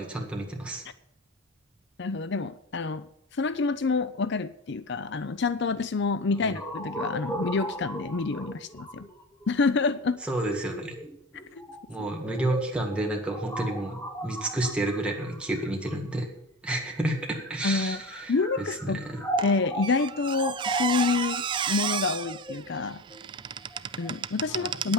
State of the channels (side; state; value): both; normal; correlation 0.30